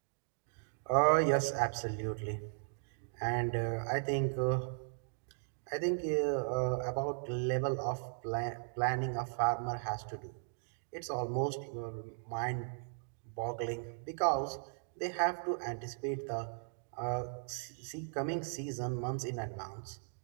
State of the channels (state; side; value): silent; left; digital silence